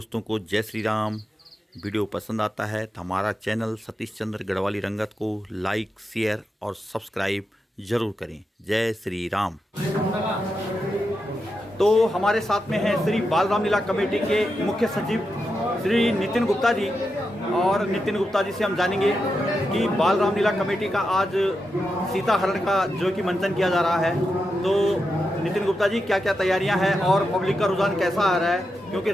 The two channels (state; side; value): normal; both; correlation 0.87